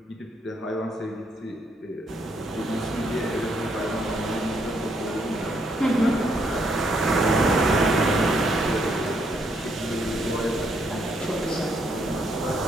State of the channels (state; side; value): normal; both; correlation 0.73